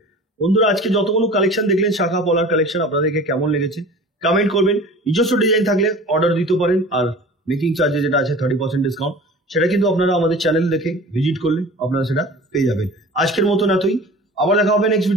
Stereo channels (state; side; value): normal; both; correlation 0.40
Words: বন্ধুরা, আজকে যতগুলো কালেকশন দেখলেন শাখা পলার কালেকশন, আপনাদেরকে কেমন লেগেছে কমেন্ট করবেন। নিজস্ব ডিজাইন থাকলে অর্ডার দিতে পারেন, আর মেকিং চার্জে যেটা আছে 30% ডিসকাউন্ট, সেটা কিন্তু আপনারা আমাদের চ্যানেল দেখে ভিজিট করলে আপনারা সেটা পেয়ে যাবেন। আজকের মতন এতই, আবার দেখা হবে নেক্সট